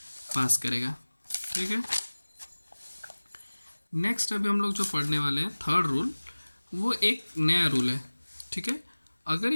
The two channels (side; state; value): both; inverted; correlation -1.00